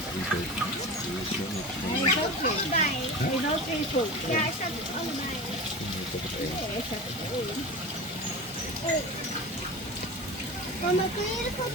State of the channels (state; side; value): normal; both; correlation 0.29